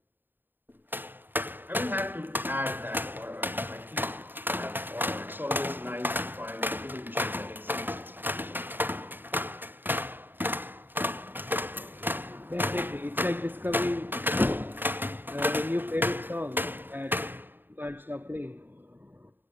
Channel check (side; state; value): left; late; 0.093 ms